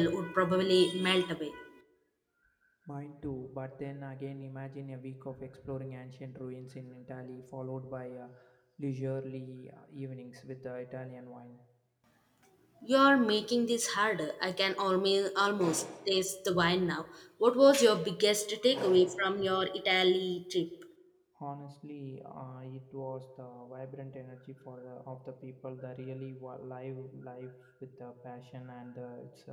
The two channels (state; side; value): identical; both; correlation 1.00